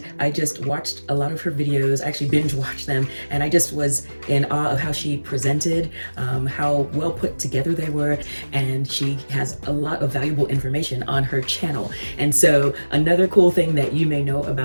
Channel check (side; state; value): both; inverted; correlation -1.00